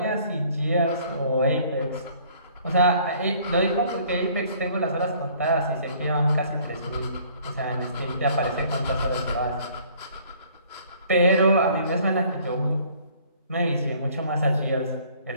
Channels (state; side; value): inverted; both; correlation -0.57